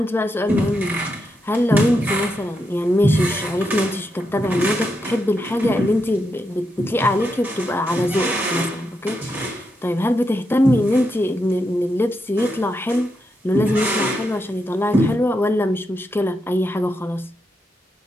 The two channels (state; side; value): normal; both; correlation 0.84